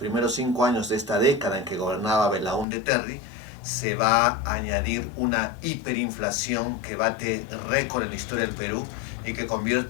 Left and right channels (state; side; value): drops out; right; at 2.7 s